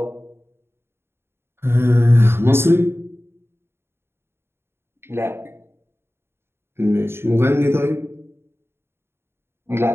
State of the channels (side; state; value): left; late; 0.12 ms